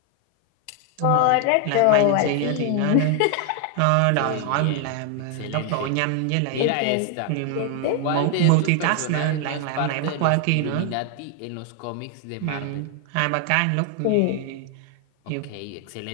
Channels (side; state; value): both; different; correlation 0.00